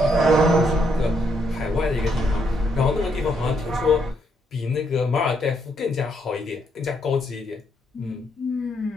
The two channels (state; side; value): normal; both; correlation 0.75